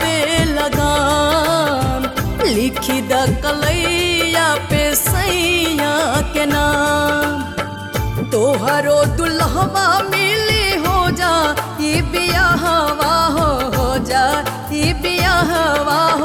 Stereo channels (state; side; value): identical; both; correlation 1.00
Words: बेलगाम, लिखी द कलैया पे सैया के नाम। तोहरो दुल्हवा मिली हो जा ई बियाहवा हो जा ई बियाहवा